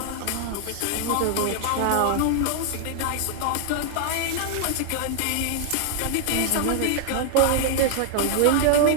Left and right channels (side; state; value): both; different; correlation -0.01